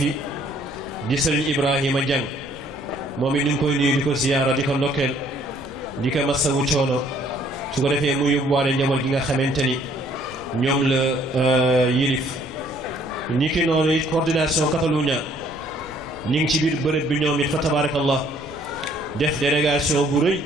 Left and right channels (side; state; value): left; noise; rumble, 20 dB below the sound